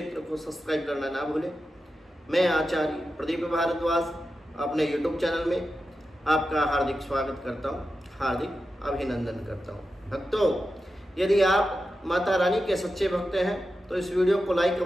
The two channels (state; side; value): normal; both; correlation 0.91